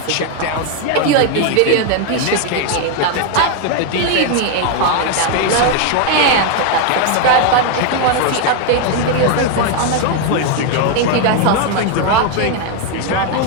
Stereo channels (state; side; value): different; both; correlation 0.01